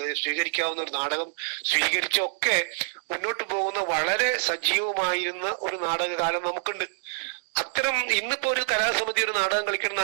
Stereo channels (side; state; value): left; silent; digital silence